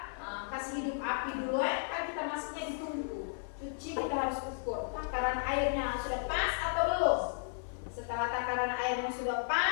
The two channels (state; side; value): silent; right; 55 dB below the other